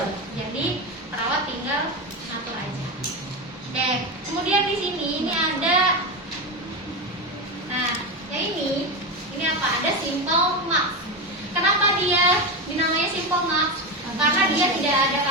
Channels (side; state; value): both; normal; correlation 0.16